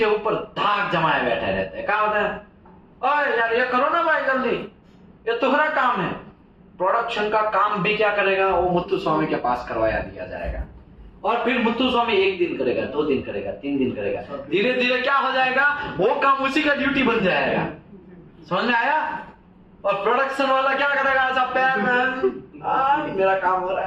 ऊपर धाक जमाए बैठे रहते हैं। क्या होता है? ओए यार ये करो ना भाई जल्दी, ये तुम्हारा काम है। प्रोडक्शन का काम भी क्या करेगा? वो मुत्तु स्वामी के पास करवाया दिया जाएगा। और फिर मुत्तु स्वामी 1 दिन करेगा, 2 दिन करेगा, 3 दिन करेगा, धीरे धीरे क्या हो जाएगा, वो काम उसी का ड्यूटी बन जाएगा। समझ में आया? और प्रोडक्शन वाला क्या करेगा? ऐसा पैर में मेरा काम हो रहा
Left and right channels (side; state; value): both; identical; correlation 1.00